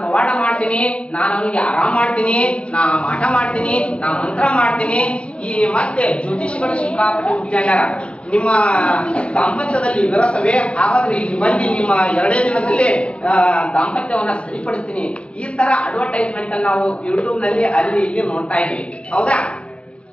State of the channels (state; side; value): late; right; 0.059 ms